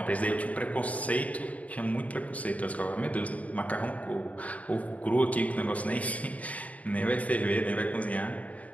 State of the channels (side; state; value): right; late; 0.069 ms